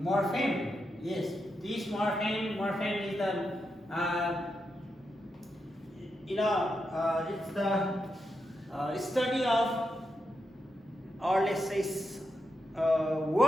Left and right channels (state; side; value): normal; both; correlation 0.85